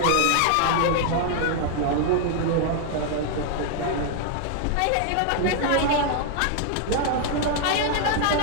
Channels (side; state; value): both; different; correlation 0.00